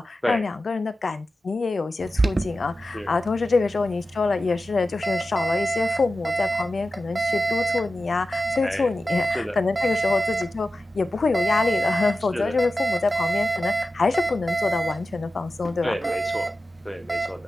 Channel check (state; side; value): normal; both; correlation 0.93